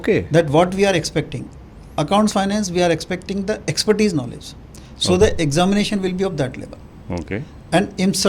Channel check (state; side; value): identical; both; correlation 1.00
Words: That what we are expecting. Accounts finance, we are expecting the expertise knowledge. So the examination will be of that level. Okay. And in